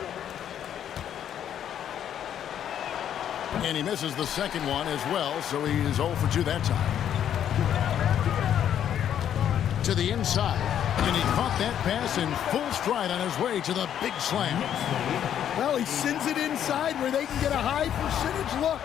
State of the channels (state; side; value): quieter; right; 9.8 dB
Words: And he misses the second one as well, so he's 0 for 2 that time. To the inside. And he caught that pass in full stride on his way to the big slam. Well, he sends it inside where they can get a high percentage look.